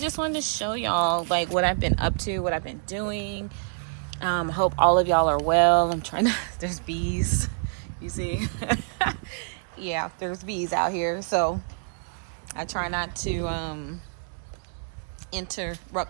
wanted to show y'all like what I've been up to, what I've been doing. Hope all of y'all are well. I'm trying to, there's bees, you see. Yeah, there's bees out here, so I try not to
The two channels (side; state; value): left; silent; digital silence